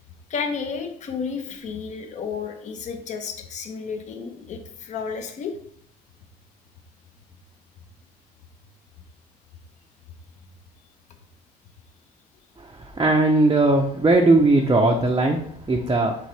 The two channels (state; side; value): normal; both; correlation 0.61